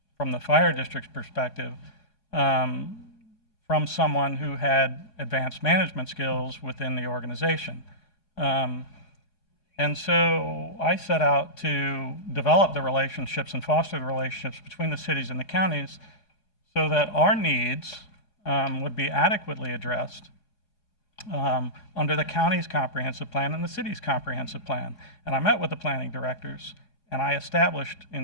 from the fire district's perspective, from someone who had advanced management skills within the organization. And so I set out to develop the relationships and foster the relationships between the cities and the counties so that our needs would be adequately addressed under the county's comprehensive plan and the city's comprehensive plan. And I met with the planning directors, and I established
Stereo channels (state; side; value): late; right; 4.8 ms